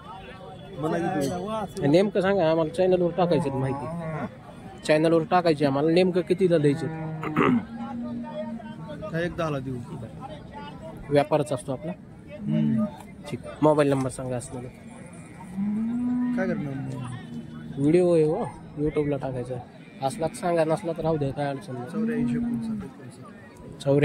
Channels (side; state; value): both; identical; correlation 1.00